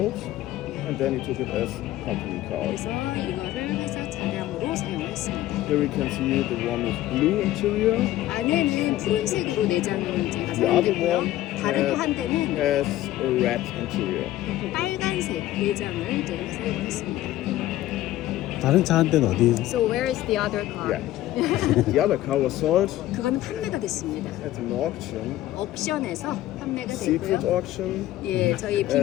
and then he took it as company cars. 그래서 이거를 회사 차량으로 사용을 했습니다. Here we can see the one with blue interior, 안에는 푸른색으로 내장을 제가 the other 사용했고요. one 다른 또 한 대는 has a red interior. 빨간색 내장을 제가 사용을 했습니다. 다른 차 한 대는 어디? So where is the other car? Yeah. The other car was sold 그거는 판매가 됐습니다. at an auction, 옥션에서 판매가 secret 됐고요. auction. 예, 저희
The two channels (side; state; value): right; quieter; 14.8 dB